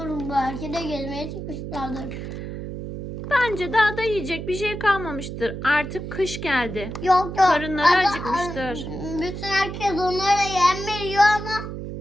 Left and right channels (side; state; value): right; noise; hum, 7 dB below the sound